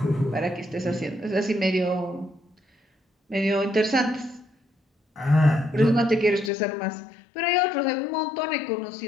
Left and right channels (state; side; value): drops out; right; at 6.5 s